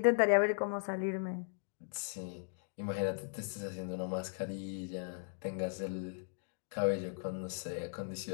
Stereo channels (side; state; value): right; silent; digital silence